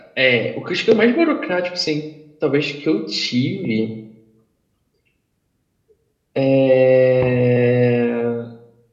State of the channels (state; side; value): identical; both; correlation 1.00